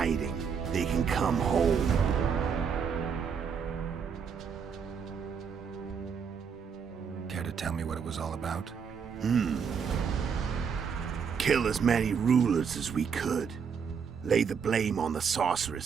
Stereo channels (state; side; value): quieter; left; 6.6 dB